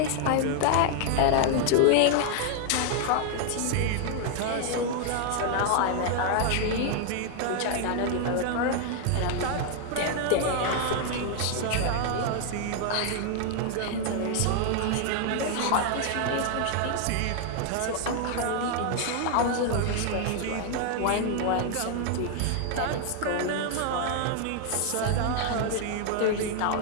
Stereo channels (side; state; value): both; different; correlation 0.00